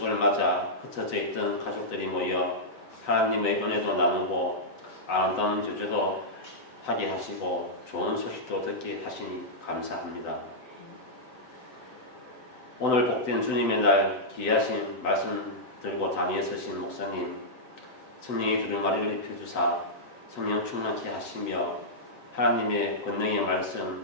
맞아 흩어져 있던 가족들이 모여 하나님의 은혜도 나누고 아름다운 교제도 하게 하시고 좋은 소식도 듣게 하시니 감사합니다. 오늘 복된 주님의 날 귀하신 말씀 들고 단위에 서신 목사님 성령의 두루마리를 입혀주사 성령 충만케 하시며 하나님의 권능의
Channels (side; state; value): right; late; 7.8 ms